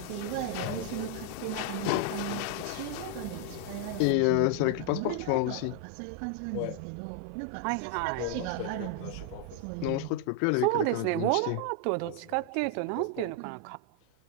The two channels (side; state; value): both; different; correlation 0.00